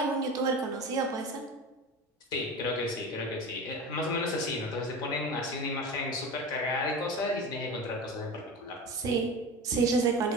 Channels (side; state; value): both; normal; correlation 0.29